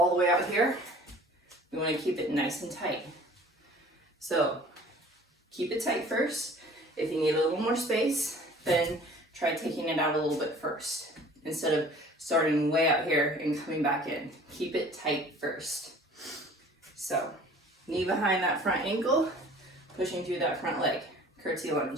the way out here. We want to keep it nice and tight. So keep it tight first. If you need a little more space, then try taking it out a little bit first instead of starting way out here and coming back in. Keep it tight first. So knee behind that front ankle, pushing through that front leg, curtsy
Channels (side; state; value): both; normal; correlation 0.49